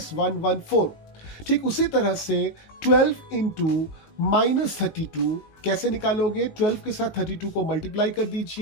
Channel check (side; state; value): right; late; 18 ms